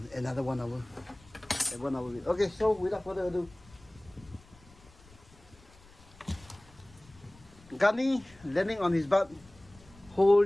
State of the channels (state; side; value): noise; left; rumble, 25 dB below the sound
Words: another 1 hour. 1 hour. Okay, so without further ado, Gunny landing on his butt,